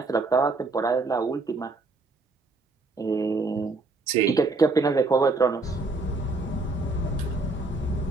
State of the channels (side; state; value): left; quieter; 3.4 dB